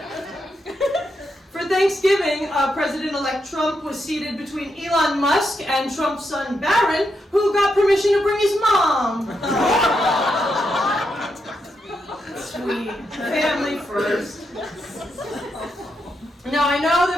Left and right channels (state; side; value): normal; both; correlation 0.83